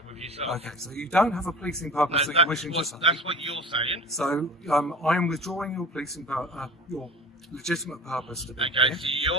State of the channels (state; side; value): normal; both; correlation 0.39